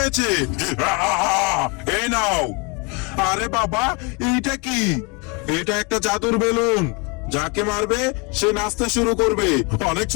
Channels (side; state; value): right; quieter; 31.0 dB